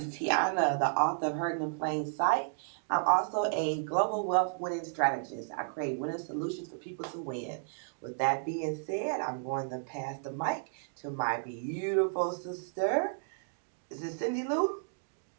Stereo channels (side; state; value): left; silent; digital silence